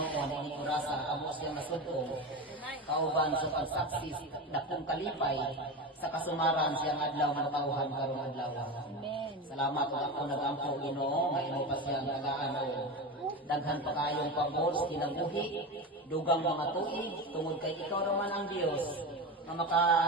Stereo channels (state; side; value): normal; both; correlation 0.23